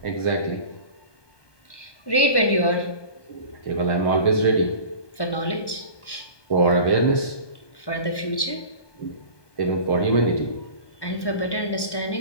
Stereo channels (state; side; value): late; right; 1.1 ms